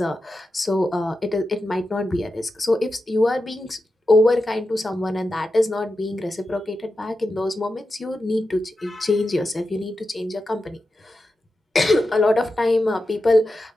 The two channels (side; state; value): both; normal; correlation 0.90